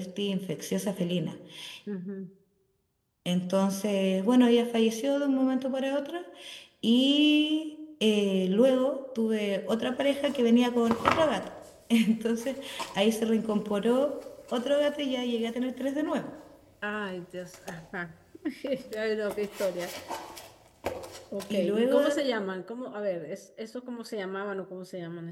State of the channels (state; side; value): identical; both; correlation 1.00